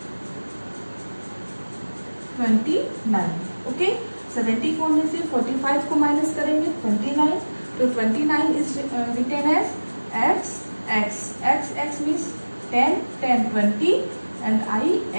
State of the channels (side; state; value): both; inverted; correlation -1.00